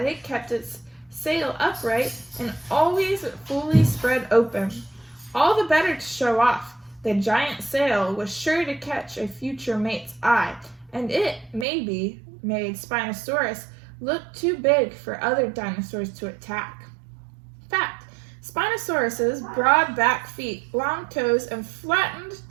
it kept its sail upright and always fully spread open. All the better to show off. The giant sail was sure to catch a future mate's eye, and it, maybe, made Spinosaurus look too big for other dinosaurs to attack. Fact: Spinosaurus's broad back feet, long toes, and flattened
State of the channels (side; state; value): left; drops out; at 11.7 s